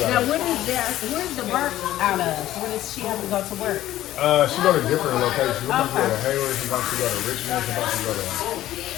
Now, where's the work out of? Where does she have to go to work? She go to different locations. She wants to go Okay. to Hayward, she wants to go to Richmond, she wants to go to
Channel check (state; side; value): quieter; right; 14.0 dB